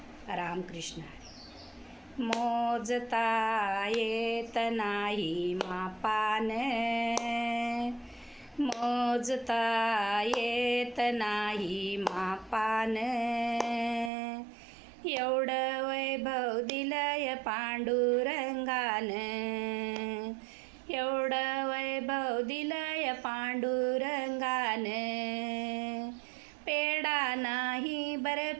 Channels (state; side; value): drops out; left; at 14.1 s